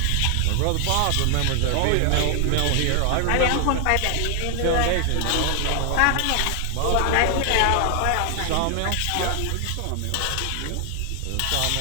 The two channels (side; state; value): both; different; correlation 0.00